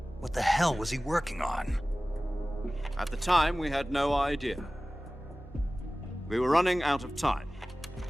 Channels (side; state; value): both; normal; correlation 0.97